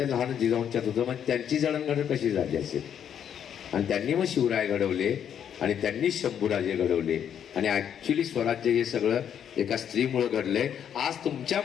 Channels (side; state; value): right; quieter; 8.9 dB